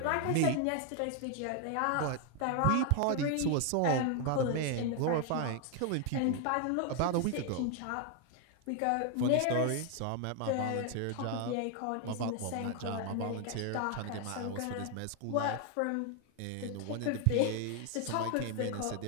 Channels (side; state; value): both; different; correlation 0.00